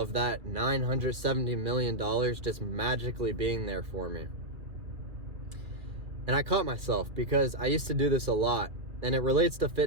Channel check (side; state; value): left; late; 2.3 ms